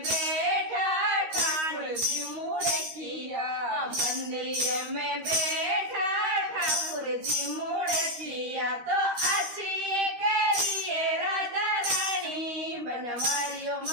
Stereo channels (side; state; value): left; late; 13 ms